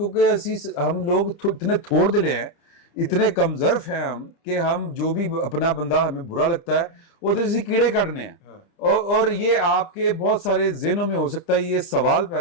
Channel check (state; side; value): late; right; 30 ms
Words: ہم لوگ اتنے تھوڑ دلے ہیں, اتنے کم ظرف ہیں ہم کہ ہم جو بھی اپنا بندہ ہمیں برا لگتا ہے وہ تو اسی کیڑے کاٹنے ہیں. اور یہ آپ کے بہت سارے ذہنوں میں ہو سکتا ہے یہ سوال